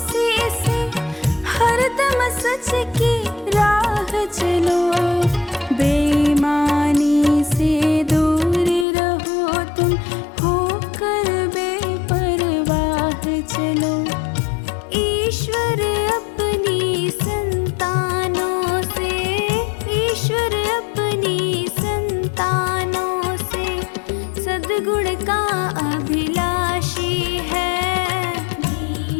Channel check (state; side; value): drops out; right; at 8.8 s